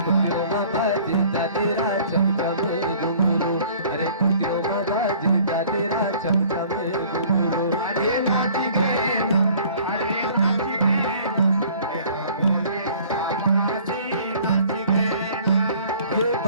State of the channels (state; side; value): inverted; both; correlation -0.52